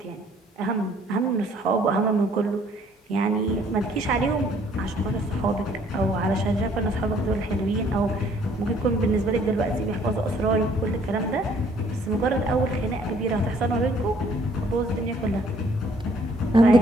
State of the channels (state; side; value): normal; both; correlation 0.61